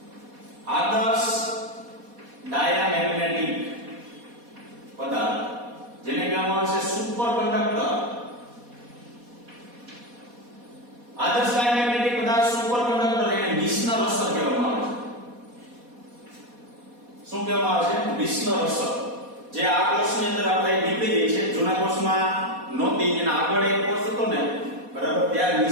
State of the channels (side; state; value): left; late; 4.2 ms